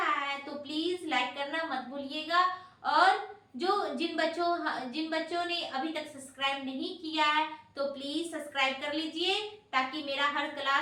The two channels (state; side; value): identical; both; correlation 1.00